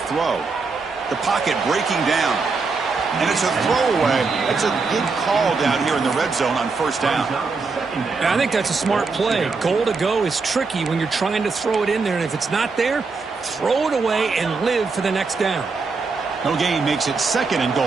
The pocket breaking down. And it's a throwaway. It's a good call down here in the red zone on 1st down. Yeah, I think that's a smart play. Goal to go is tricky when you're trying to throw it in there. And if it's not there, throw it away and live for the next down. No gain makes it 2nd and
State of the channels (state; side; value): quieter; left; 4.4 dB